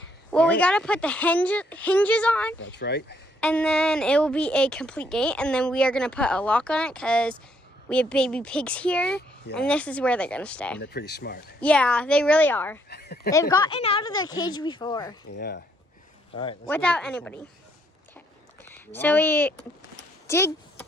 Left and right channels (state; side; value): normal; both; correlation 0.70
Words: Well, we gotta put the hinges on. That's right. And then it will be a complete gate. And then we are gonna put a lock on it because we have baby pigs here. Yeah. And this is where they're gonna stay. And they're pretty smart. Yeah, they really are. They've gotten out of their cage before. Yeah. All right. Without anybody. Okay. So we did.